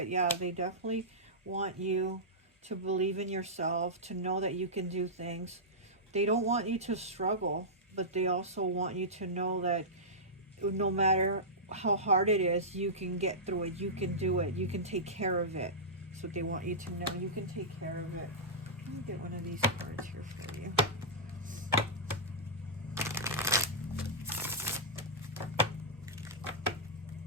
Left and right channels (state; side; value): normal; both; correlation -0.13